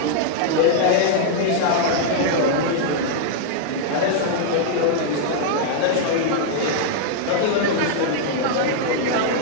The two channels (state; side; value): different; both; correlation -0.01